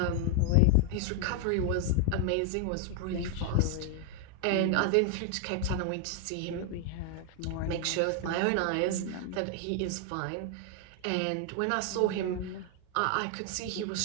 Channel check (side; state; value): both; different; correlation 0.00